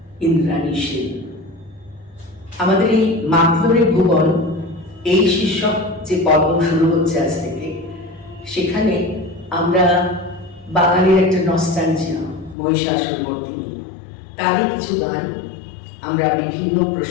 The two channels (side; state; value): right; drops out; at 12.6 s